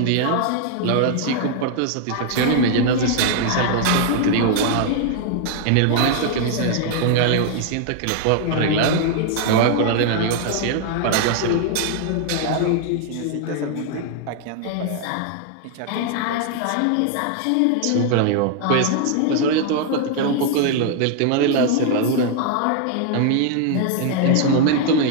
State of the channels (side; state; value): both; different; correlation 0.00